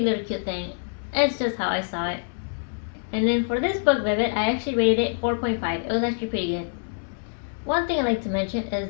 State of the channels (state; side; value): silent; right; 61 dB below the other